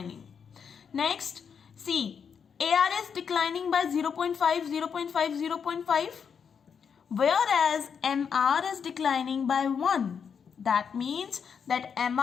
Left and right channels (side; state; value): right; quieter; 6.8 dB